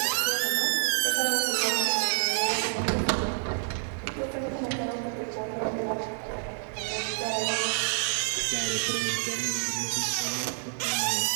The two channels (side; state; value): left; silent; digital silence